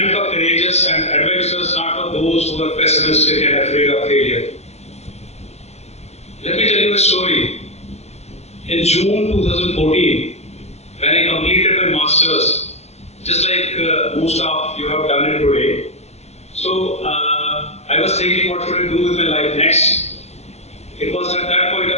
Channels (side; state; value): right; late; 0.31 ms